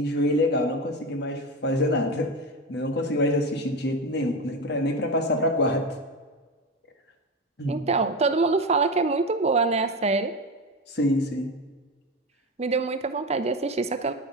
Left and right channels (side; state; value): both; normal; correlation 0.20